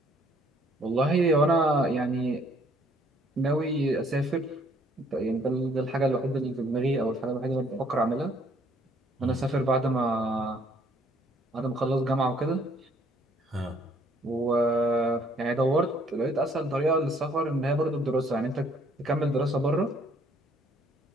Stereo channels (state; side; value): normal; both; correlation 0.63